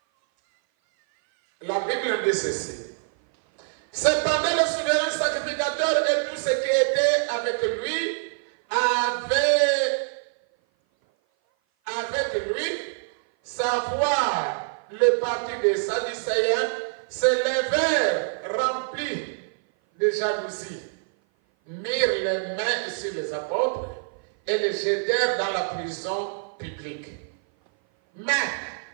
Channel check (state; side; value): silent; left; 56 dB below the other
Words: La Bible dit ceci. Cependant, le souverain sacrificateur et tous ceux qui étaient avec lui savoir le parti des Sadducéens, se levèrent remplis de jalousie, mirent les mains sur les apôtres et les jetèrent dans la prison publique. Mais